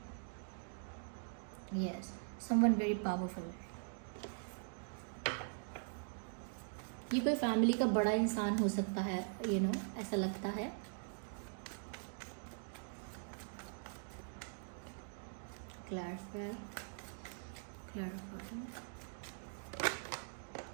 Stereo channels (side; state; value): left; silent; digital silence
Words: Yes, someone very powerful. ये कोई फैमिली का बड़ा इंसान हो सकता है, ऐसा लगता है। क्लैरिफाई।